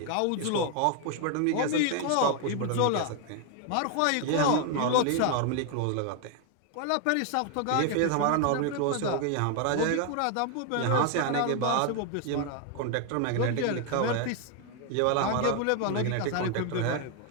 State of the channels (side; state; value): both; different; correlation 0.00